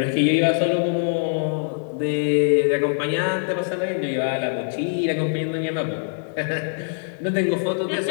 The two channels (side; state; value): right; silent; digital silence